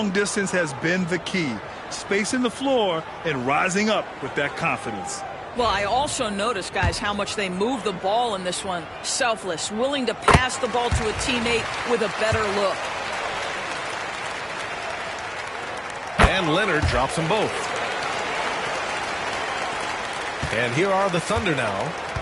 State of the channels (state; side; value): identical; both; correlation 1.00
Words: distance has been the key. Spacing the floor and rising up with that confidence. Well, I also noticed, guys, how much they move the ball in this one. Selfless, willing to pass the ball to a teammate with a better look. And Leonard drops them both. And here are the Thunder now.